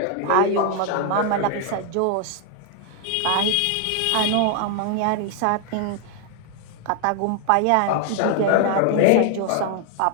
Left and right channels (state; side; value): different; both; correlation 0.00